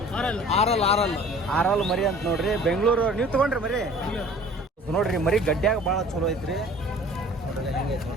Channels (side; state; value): both; normal; correlation 0.48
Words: ಆರಲ್ ಮರಿ ಅಂತ ನೋಡ್ರಿ. ಬೆಂಗಳೂರು. ನೀವು ತಗೊಂಡ್ರಿ ಮರಿ? ನೋಡ್ರಿ ಮರಿ ಗಡ್ಡ್ಯಾಗ ಭಾಳ ಚಲೋ ಐತ್ರಿ. ನೋಡ್ರಿ ಹೆಂಗೆ ಐತಿ